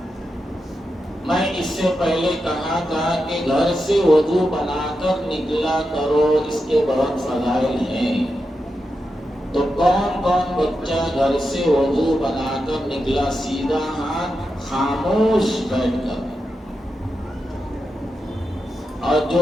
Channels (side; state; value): both; normal; correlation 0.88